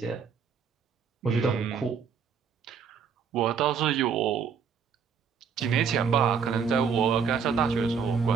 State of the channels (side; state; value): left; quieter; 6.5 dB